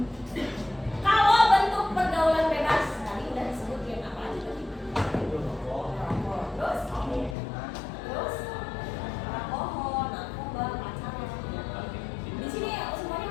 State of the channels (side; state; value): right; drops out; at 7.4 s